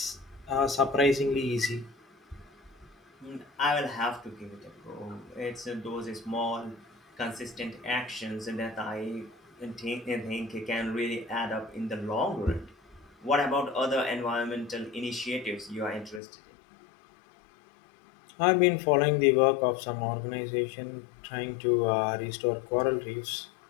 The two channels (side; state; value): right; drops out; at 16.2 s